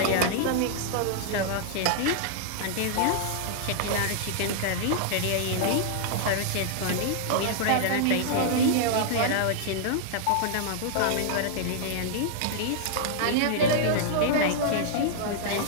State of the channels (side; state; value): both; different; correlation -0.01